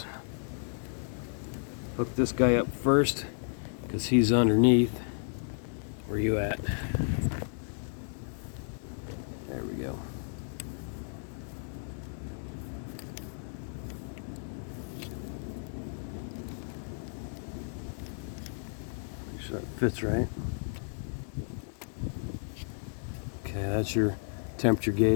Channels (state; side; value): silent; right; digital silence